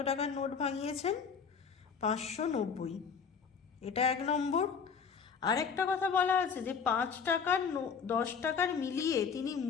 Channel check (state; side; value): quieter; right; 6.2 dB